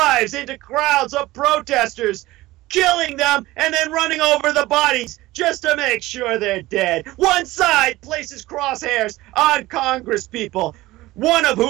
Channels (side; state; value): left; quieter; 18.2 dB